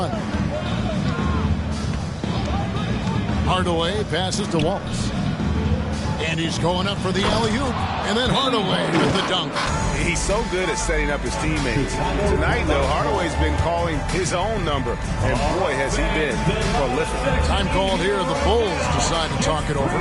Hardaway passes to Wallace. And he's going up for the alley-oop. And then Hardaway with the dunk. He's so good at setting up his teammates. Tonight, though, Hardaway's been calling his own number. And boy, has he been prolific. Time called here. The Bulls decide to talk it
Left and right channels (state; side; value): identical; both; correlation 1.00